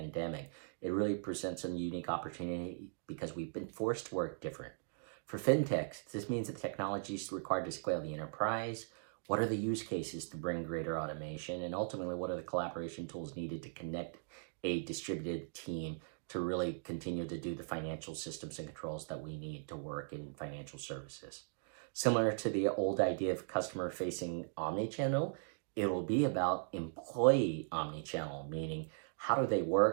it really presents a unique opportunity because we've been forced to work different. For fintechs, this means that technology is required to scale the enterprise. What are the use cases to bring greater automation? And ultimately, what are the collaboration tools needed to connect a distributed team to really continue to do the financial systems and controls that we need to work in financial services? Similar to the old idea of customer-facing omnichannel, it will be about employee omnichannel, meaning how do they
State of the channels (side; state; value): left; silent; digital silence